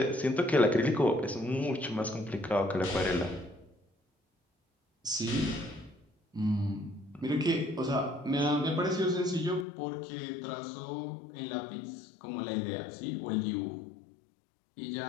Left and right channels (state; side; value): drops out; right; at 9.7 s